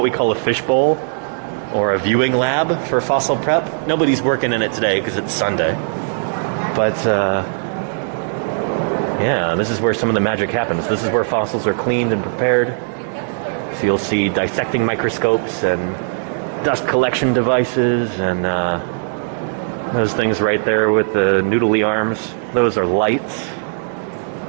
we call a fishbowl or a viewing lab for fossil prep. Nobody's working in it today because it's Sunday. But yeah, this is where some of the magic happens. This is where fossils are cleaned and prepared. So you'll see dissecting microscopes and dust collection devices and those things right there with the noodly arms. Those are lights,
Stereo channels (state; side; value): silent; left; digital silence